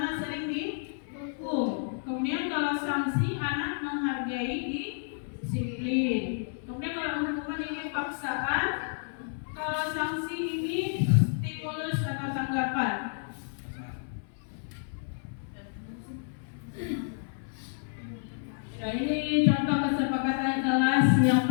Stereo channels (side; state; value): right; silent; 58 dB below the other